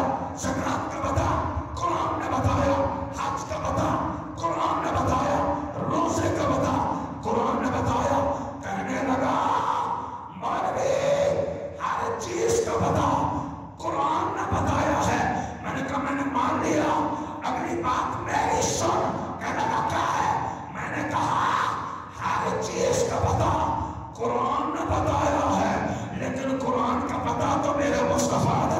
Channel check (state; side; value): identical; both; correlation 1.00